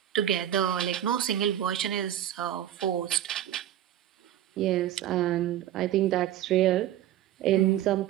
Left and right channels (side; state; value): left; quieter; 11.9 dB